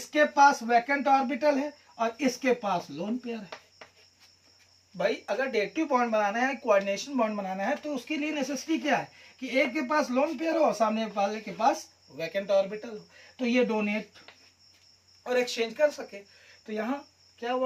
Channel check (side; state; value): both; identical; correlation 1.00